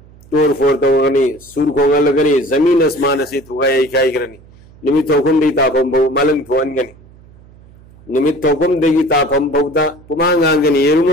تور فورتا ہوگنی سور کھونگا لگنی زمین اسمان سے تھوگا ایک آئی کرنی نمیت حکم دی تاپم بھو ملنگ تھوان گنی نمیت حکم دیگی تاپم بھو دا پمانگ آنگنی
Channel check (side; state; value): right; noise; hum, 24 dB below the sound